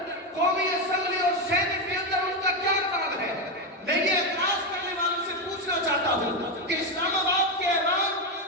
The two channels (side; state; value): both; normal; correlation 0.09